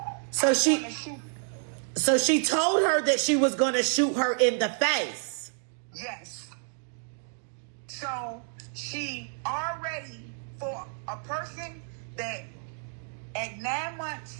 So she told her that she was going to shoot her in the face. Yes. So she already, for a person that at 9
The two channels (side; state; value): left; silent; 58 dB below the other